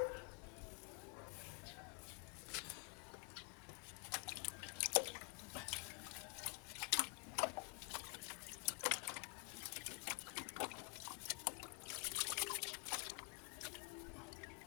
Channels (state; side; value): quieter; right; 37.3 dB